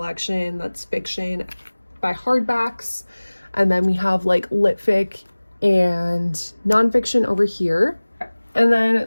that's fiction by hardbacks. And then we have like lit fic and nonfiction over here. And then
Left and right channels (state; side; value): inverted; both; correlation -1.00